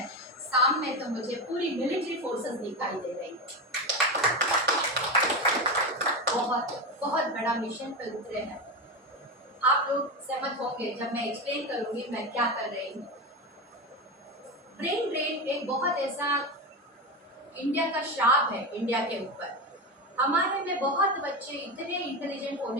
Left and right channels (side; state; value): both; normal; correlation 0.18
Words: सामने तो मुझे पूरी मिलिट्री फोर्सेस दिखाई दे रही है। बहुत बहुत बड़ा मिशन पे उतरे हैं। आप लोग सहमत होंगे जब मैं एक्सप्लेन करूंगी मैं क्या कर रही हूँ। ब्रेन ड्रेन एक बहुत ऐसा इंडिया का श्राप है इंडिया के ऊपर। हमारे में बहुत बच्चे इतने इंटेलिजेंट